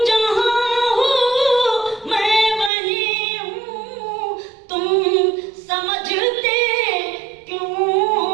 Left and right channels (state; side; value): drops out; left; at 2.7 s